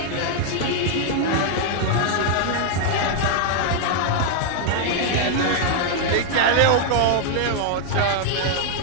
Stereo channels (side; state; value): both; different; correlation 0.00